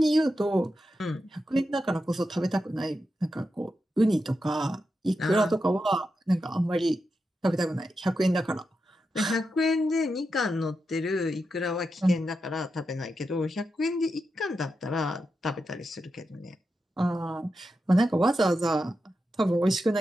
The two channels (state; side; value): normal; both; correlation 0.88